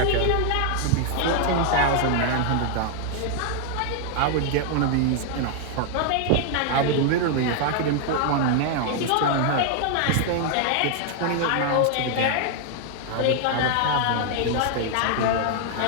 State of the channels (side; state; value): both; different; correlation 0.00